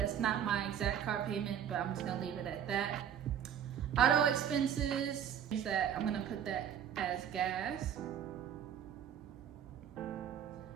not my exact car payment, but I'm just gonna leave it at that. Auto expenses, that I'm gonna put that as gas.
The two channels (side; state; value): left; quieter; 9.2 dB